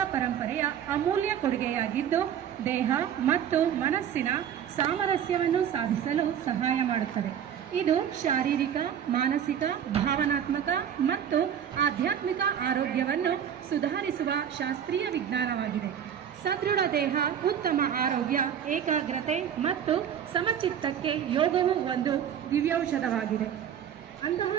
ಪರಂಪರೆಯ ಅಮೂಲ್ಯ ಕೊಡುಗೆಯಾಗಿದ್ದು ದೇಹ ಮತ್ತು ಮನಸ್ಸಿನ ಸಾಮರಸ್ಯವನ್ನು ಸಾಧಿಸಲು ಸಹಾಯ ಮಾಡುತ್ತದೆ. ಇದು ಶಾರೀರಿಕ, ಮಾನಸಿಕ, ಭಾವನಾತ್ಮಕ ಮತ್ತು ಆಧ್ಯಾತ್ಮಿಕ ಆರೋಗ್ಯವನ್ನು ಸುಧಾರಿಸುವ ಶಾಸ್ತ್ರೀಯ ವಿಜ್ಞಾನವಾಗಿದೆ. ಸದೃಢ ದೇಹ, ಉತ್ತಮ ಆರೋಗ್ಯ, ಏಕಾಗ್ರತೆ ಮತ್ತು ಸಮಚಿತ್ತಕ್ಕೆ ಯೋಗವು ಒಂದು ದಿವ್ಯೌಷಧವಾಗಿದೆ. ಅಂತಹ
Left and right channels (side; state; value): left; quieter; 9.0 dB